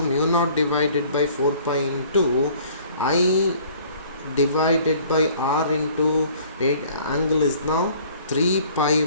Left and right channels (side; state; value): both; inverted; correlation -0.53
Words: mu naught divided by 4 pi into I divided by R into angle is now 3 pi